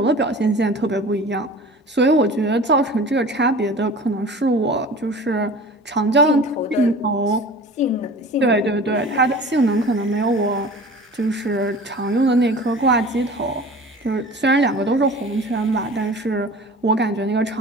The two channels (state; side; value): normal; both; correlation 0.40